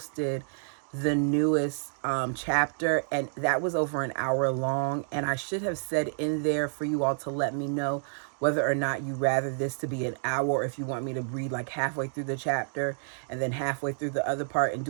the newest chapter, and that was over an hour long, and I should have said in there for you all to let me know whether or not you rather this to be an hour, or if you want me to read like halfway through the chapter and then halfway through the other part and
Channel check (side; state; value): left; silent; digital silence